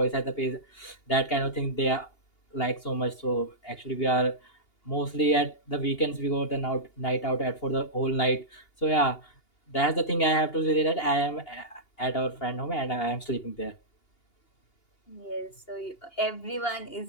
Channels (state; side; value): late; right; 2.8 ms